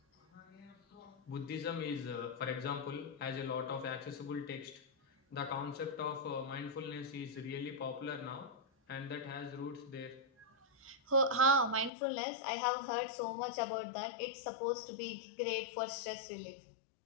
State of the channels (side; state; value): right; drops out; at 11.9 s